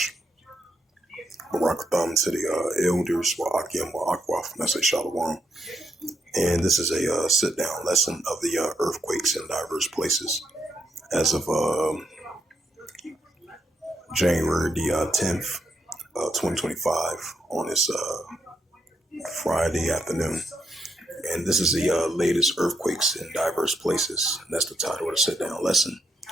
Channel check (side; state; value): both; normal; correlation 0.79